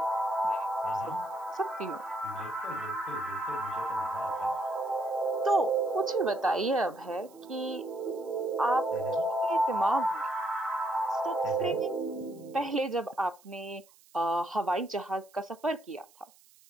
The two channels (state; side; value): noise; right; hiss, 27 dB below the sound